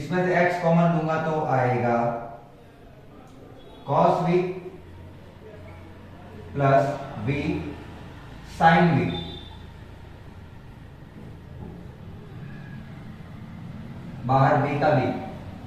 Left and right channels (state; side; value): identical; both; correlation 1.00